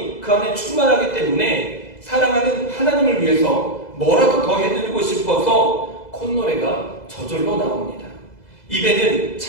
그 안에 충만하기 때문에 사랑하는 하나님을 위해서 뭐라도 더 해드리고 싶어서 콧노래가 저절로 나옵니다. 입에는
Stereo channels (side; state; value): right; late; 2.0 ms